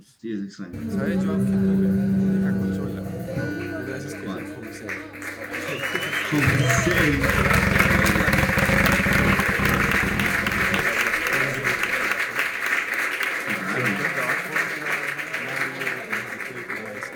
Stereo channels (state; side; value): identical; both; correlation 1.00